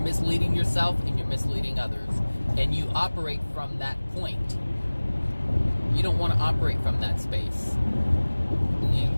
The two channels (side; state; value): both; inverted; correlation -1.00